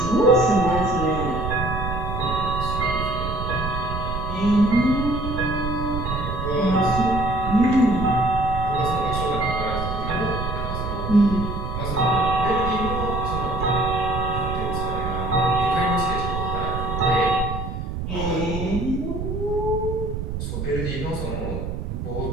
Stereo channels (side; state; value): right; noise; rumble, 4 dB below the sound